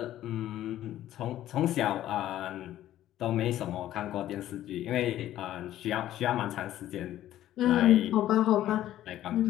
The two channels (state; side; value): quieter; right; 13.1 dB